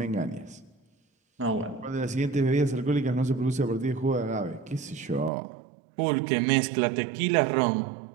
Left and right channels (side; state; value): left; drops out; at 5.3 s